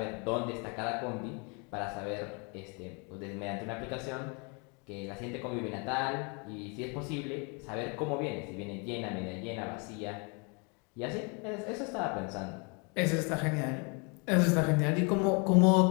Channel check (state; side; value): quieter; right; 33.6 dB